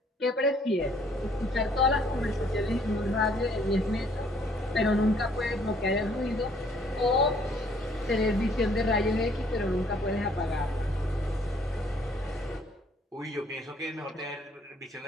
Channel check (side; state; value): both; normal; correlation 0.62